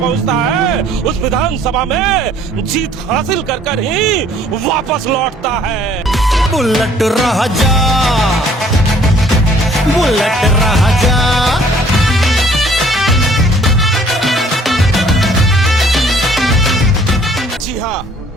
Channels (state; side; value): normal; both; correlation 0.58